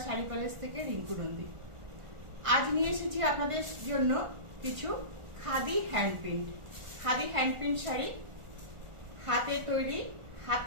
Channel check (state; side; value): late; left; 1.4 ms